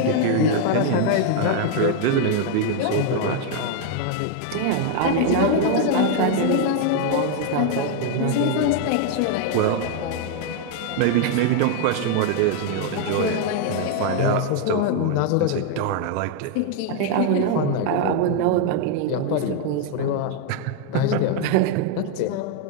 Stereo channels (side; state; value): both; different; correlation 0.00